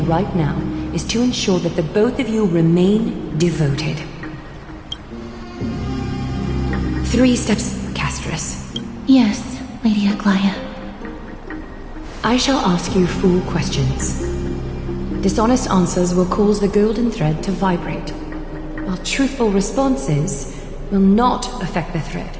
right now is to ensure that the both of you remain devoted. 3 steps, Castris. Yes, Lady Aglaia. I shall ask you 4 questions. Dishonest answers will cause the golden thread to vibrate, while truthful responses will not affect the thread.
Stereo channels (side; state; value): both; identical; correlation 1.00